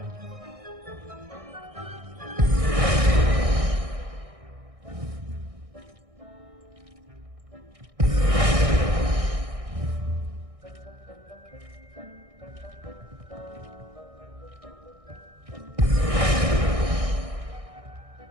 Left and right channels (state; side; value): late; left; 1.6 ms